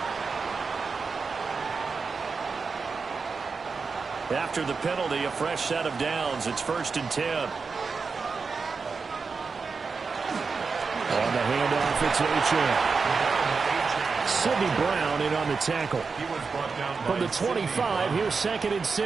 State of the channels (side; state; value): left; quieter; 4.9 dB